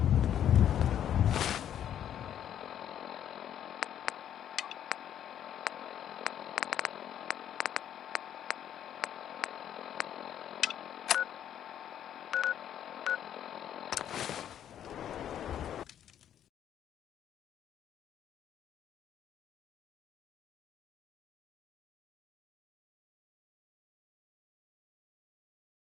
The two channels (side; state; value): right; quieter; 10.1 dB